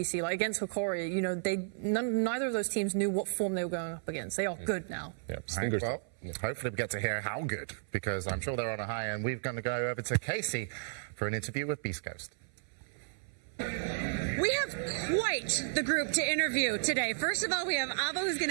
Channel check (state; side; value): silent; left; 56 dB below the other